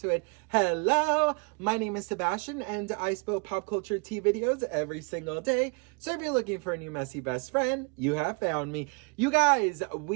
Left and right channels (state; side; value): quieter; left; 33.3 dB